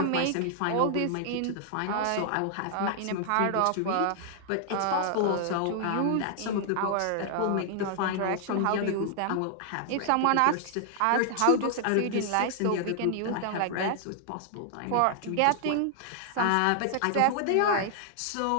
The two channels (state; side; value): different; both; correlation -0.01